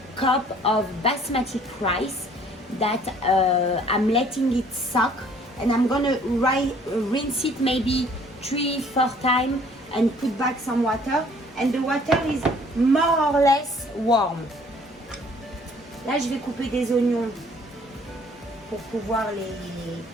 cups of basmati rice that I'm letting it soak, and I'm gonna rinse it maybe 3-4 times and put back some water, and the water is more or less warm. Là je vais couper des oignons pour pouvoir les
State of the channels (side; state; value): both; normal; correlation 0.57